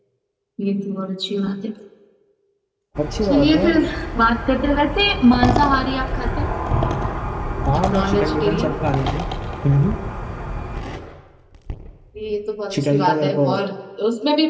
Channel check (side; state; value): both; identical; correlation 1.00